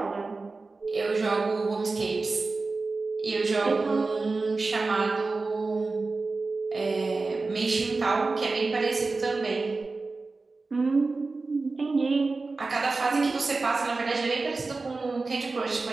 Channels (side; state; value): left; quieter; 3.8 dB